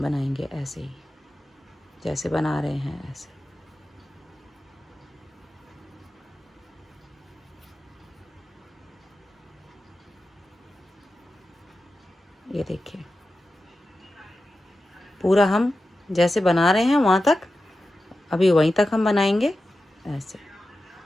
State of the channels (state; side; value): normal; both; correlation 0.92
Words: बनाएंगे ऐसे ही जैसे बना रहे हैं ऐसे। ये देखिए पूरा हम जैसे बना रहे हैं वहाँ तक, अभी वहीं तक हम बनाएंगे ऐसे।